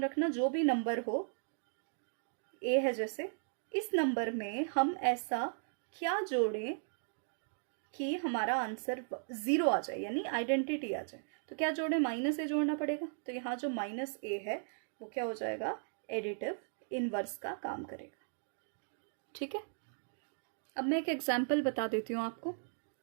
रखना जो भी नंबर हो, ए है जैसे, इस नंबर में हम ऐसा क्या जोड़ें कि हमारा आंसर 0 आ जाए, यानी आइडेंटिटी आ जाए। तो क्या जोड़े, -a जोड़ना पड़ेगा। तो यहाँ जो -a है वो क्या हो जाएगा, एडिटिव इनवर्स का काम करेगा, ठीक है। अब मैं एक एग्जाम्पल बता देती हूँ आपको।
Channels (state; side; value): silent; left; digital silence